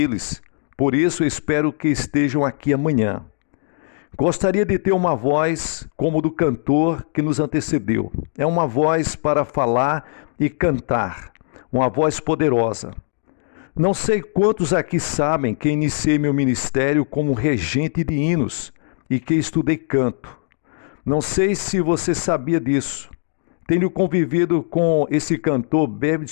Por isso, espero que estejam aqui amanhã. Gostaria de ter uma voz como do cantor que nos antecedeu. É uma voz para falar e cantar. Uma voz poderosa. Não sei quantos aqui sabem que iniciei meu ministério como regente de hinos e que estudei canto. Não sei se você sabia disso. Tenho convivido com esse cantor Bevy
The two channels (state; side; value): silent; right; digital silence